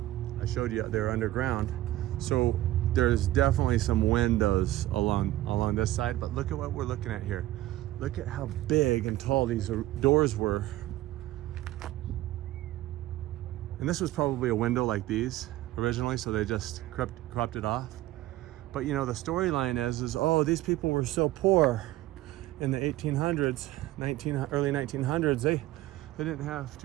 I showed you they're underground. So there's definitely some windows along this side, but look at what we're looking at here. Look at how big and tall these doors were. And this was probably a window like these originally, so they just cropped it off. But you know, the storyline is oh, these people were so poor in the 1800s, early 1900s, they didn't have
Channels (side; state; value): left; quieter; 15.8 dB